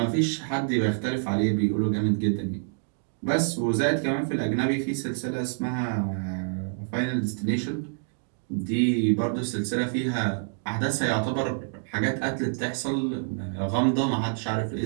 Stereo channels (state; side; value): silent; left; digital silence